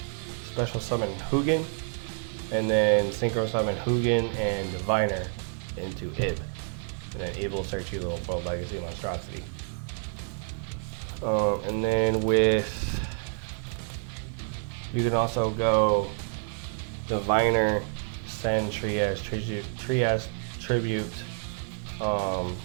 special summon Hugin, and then synchro summon Hugin and Diviner into Ib. And then Ib will search you the World Legacy monstrosity. And then with, you can also go Diviner, send Trias, Tribute,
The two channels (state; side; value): silent; left; 59 dB below the other